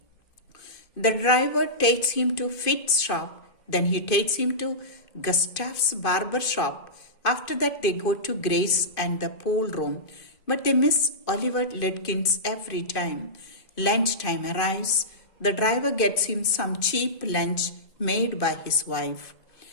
The driver takes him to Fitz's shop, then he takes him to Gustav's barber shop. After that they go to Grace and the pool room, but they miss Oliver Lutkins every time. Lunchtime arrives. The driver gets him some cheap lunch made by his wife.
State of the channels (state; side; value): late; right; 2.5 ms